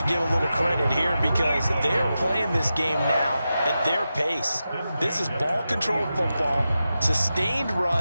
give a little credit here because they're playing this game now at their pace. This is ball control football, sustained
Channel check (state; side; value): inverted; both; correlation -0.91